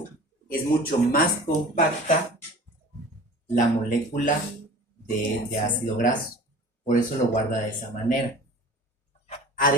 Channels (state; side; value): normal; both; correlation 0.42